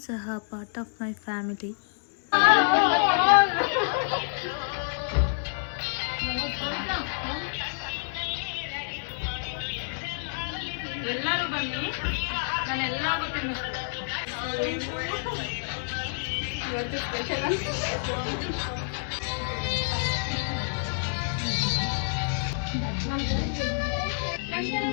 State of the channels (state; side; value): silent; right; 59 dB below the other